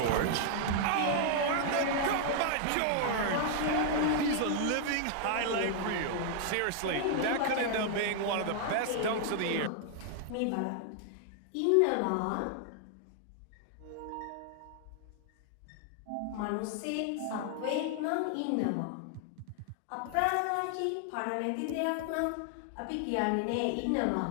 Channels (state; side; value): different; both; correlation 0.00